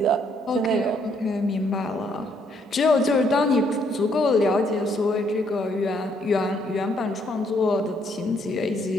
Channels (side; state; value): both; normal; correlation 0.70